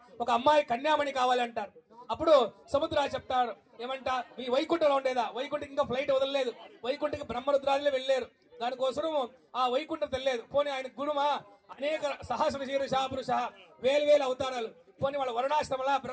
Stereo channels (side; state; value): both; identical; correlation 1.00